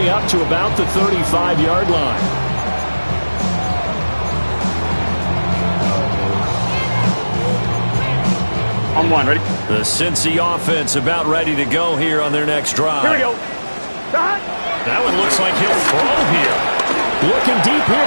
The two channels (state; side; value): inverted; both; correlation -1.00